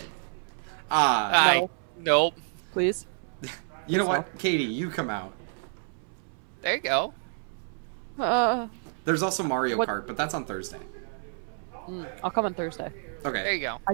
Nope. Please. You know what? Katie, you come out. There you go. There's also Mario What- Kart, but that's on Thursday. I'll come on Thursday. Okay. There you go. I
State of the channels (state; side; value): silent; left; 59 dB below the other